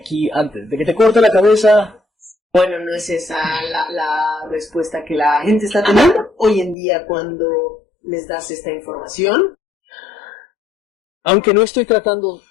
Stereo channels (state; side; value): drops out; right; at 6.8 s